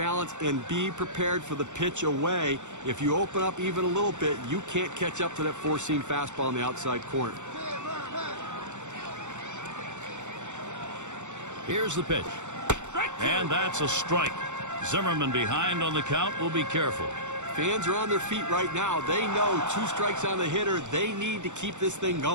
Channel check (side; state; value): left; late; 0.84 ms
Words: and be prepared for the pitch away. If you open up even a little bit, you can't catch up to that four-seam fastball in the outside corner. Here's the pitch. And that's a strike. Zimmerman behind on the count. Will be careful. Fans are on their feet right now. They know 2 strikes on the hitter. They need to keep this thing